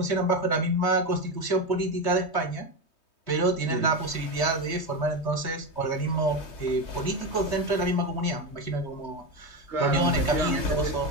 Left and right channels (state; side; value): late; right; 3.2 ms